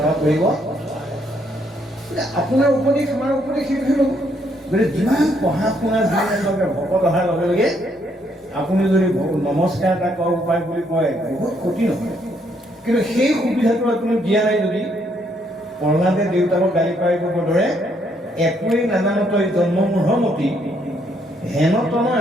কৰিব আপোনাৰ উপদেশ আমাৰ উপদেশ সেইটোহে ল'ব। গতিকে যিমান পঢ়া শুনা যিমানকে ভকত অহাৰ লগে লগে আপুনি যদি নমস্কাৰ এটা কৰা উপায় বুলি কয় বহুত ক্ষতি নহয়, কিন্তু সেই সুবিধাটো আপুনি দিয়া নাই যদি প্ৰহ্লাদে দেউতাকক গালি পাৰিবৰ দৰে একোৱেই নাজানো তই জন্মমূঢ়মতি হেন তনয়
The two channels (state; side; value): normal; both; correlation 0.71